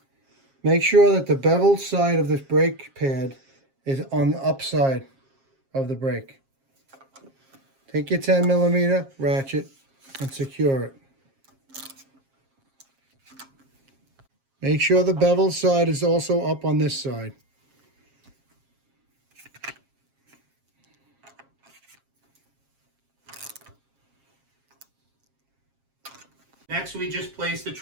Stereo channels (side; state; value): left; late; 7.4 ms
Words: Make sure that the beveled side of the brake pad is on the upside of the brake. Take your 10mm ratchet and secure it. Make sure the beveled side is also up on this side. Next, we just place the